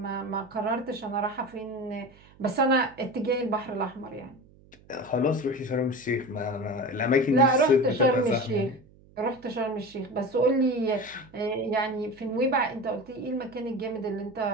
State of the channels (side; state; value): right; noise; hum, 26 dB below the sound